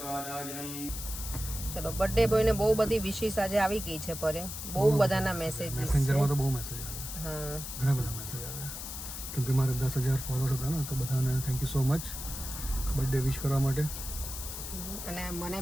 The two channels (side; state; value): left; noise; hiss, 8 dB below the sound